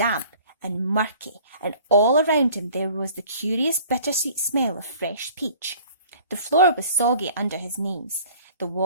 and murky, and all around him there was the curious bittersweet smell of fresh peach. The floor was soggy under his knees. The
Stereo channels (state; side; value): inverted; both; correlation -0.50